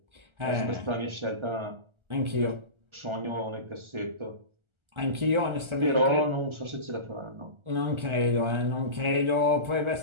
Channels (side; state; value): left; late; 1.4 ms